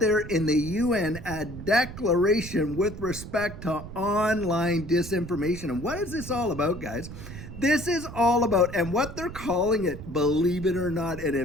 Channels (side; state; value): right; noise; rumble, 11 dB below the sound